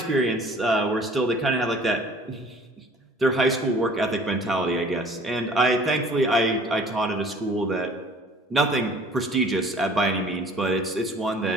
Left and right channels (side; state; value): both; normal; correlation 0.51